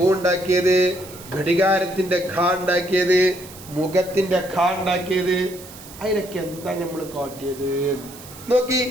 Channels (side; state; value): right; noise; hiss, 17 dB below the sound